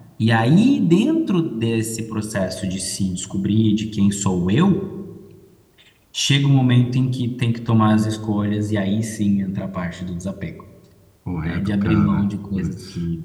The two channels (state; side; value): identical; both; correlation 1.00